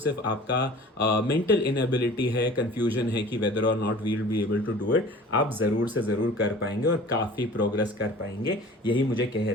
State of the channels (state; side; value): normal; both; correlation 0.44